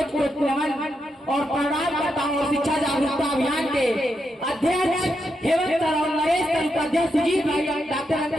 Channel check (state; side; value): normal; both; correlation 0.83